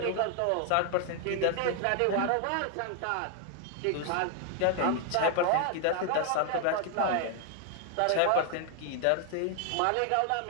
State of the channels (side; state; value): both; different; correlation 0.00